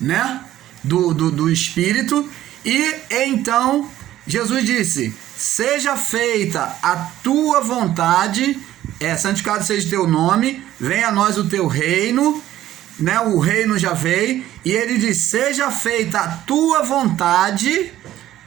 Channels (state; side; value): quieter; left; 13.4 dB